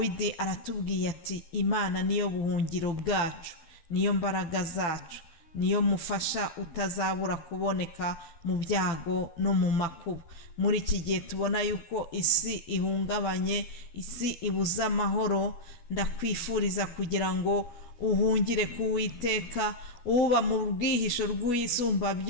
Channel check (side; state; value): right; late; 12 ms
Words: aratubwiye ati Imana niyo buhungiro bwacu, niyo mbaraga zacu, niyo mufasha utazabura kuboneka mu byago no mu makuba. Muri iki gihe tubona yuko isi ihungabanye, isi ibuze amahoro, ndakwifuriza kugira ngo uhungire ku Uwiteka, uba mu bwihisho rw'Isumba